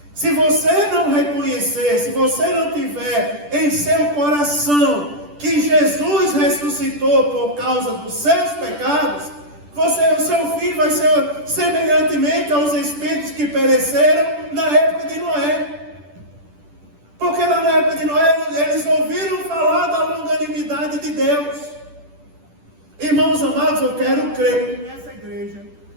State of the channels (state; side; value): late; left; 10 ms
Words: Se você não reconhecer, se você não tiver em seu coração que Jesus ressuscitou por causa dos seus pecados, o seu fim vai ser semelhantemente aos espíritos que pereceram na época de Noé. Porque lá na época de Noé, eles ouviram falar da longanimidade de Deus. Irmãos amados, eu quero crer que nessa igreja,